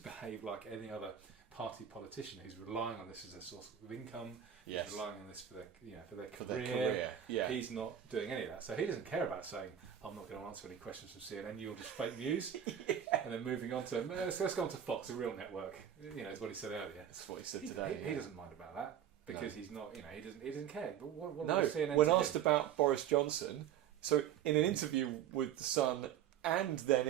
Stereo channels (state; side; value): quieter; left; 9.7 dB